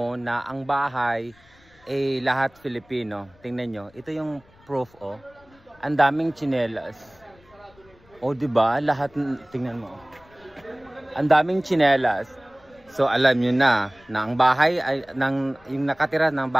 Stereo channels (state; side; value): noise; left; rumble, 29 dB below the sound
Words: na ang bahay ay lahat Filipino. Tingnan nyo, ito yung proof oh. Ang daming tsinelas. O diba? Lahat, tingnan mo. Ang daming tsinelas. So alam nyo na ang bahay ay yung nakatira ng